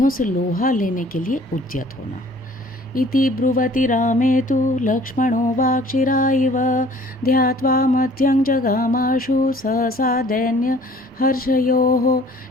से लोहा लेने के लिए उद्यत होना। इति ब्रुवति रामे तु लक्ष्मणो वाक्शिराइव ध्यात्वा मध्यं जगामाशु सहसा दैन्य हर्षयोः।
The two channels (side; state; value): both; normal; correlation 0.53